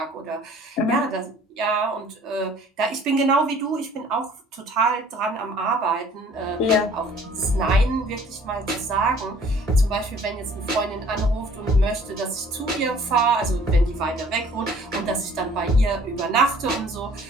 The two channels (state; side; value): normal; both; correlation 0.54